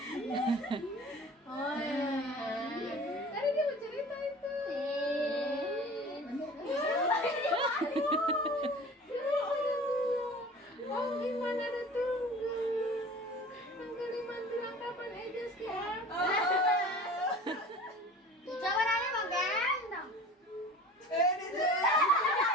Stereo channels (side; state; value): both; normal; correlation 0.42